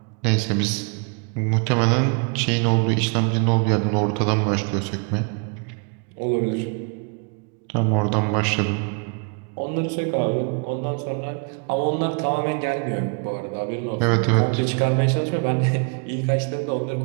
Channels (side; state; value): left; quieter; 36.2 dB